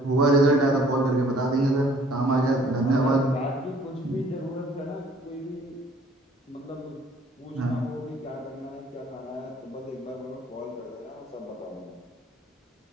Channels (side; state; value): both; normal; correlation 0.57